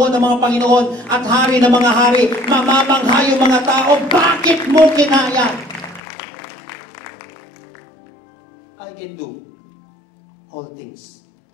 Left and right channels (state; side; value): drops out; right; at 6.0 s